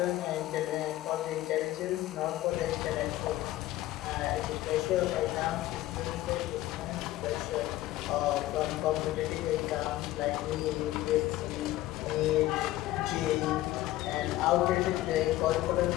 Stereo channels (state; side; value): quieter; right; 15.7 dB